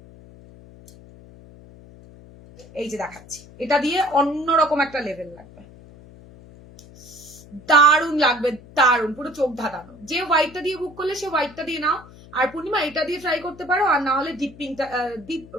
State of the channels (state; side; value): noise; left; hum, 21 dB below the sound